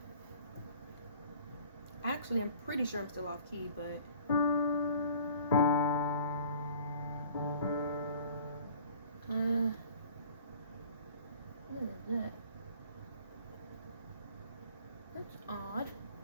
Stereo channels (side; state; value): both; inverted; correlation -0.50